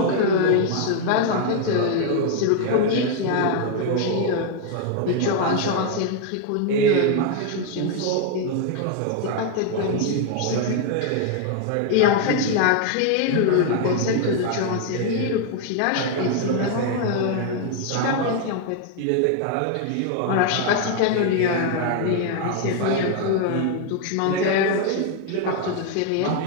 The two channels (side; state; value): both; different; correlation 0.00